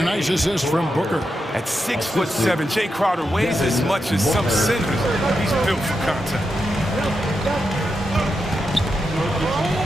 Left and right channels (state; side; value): normal; both; correlation 0.86